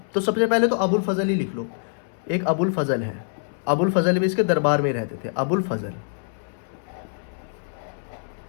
तो सबसे पहले तो अबुल फजल ही लिख लो। एक अबुल फजल है, अबुल फजल भी इसके दरबार में रहते थे, अबुल फजल,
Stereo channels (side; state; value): right; silent; 62 dB below the other